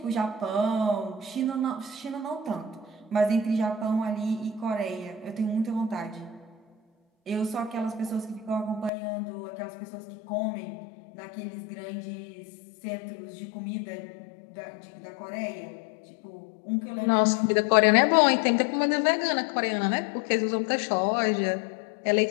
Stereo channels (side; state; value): right; drops out; at 8.9 s